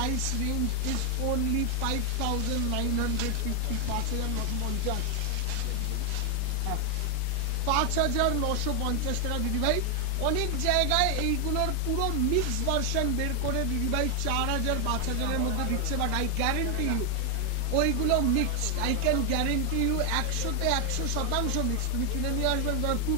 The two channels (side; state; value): both; different; correlation 0.00